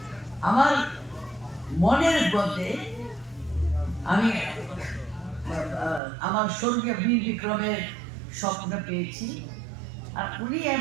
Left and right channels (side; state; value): left; drops out; at 6.0 s